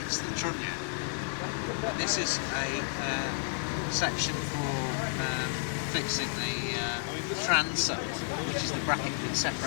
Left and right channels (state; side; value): silent; right; digital silence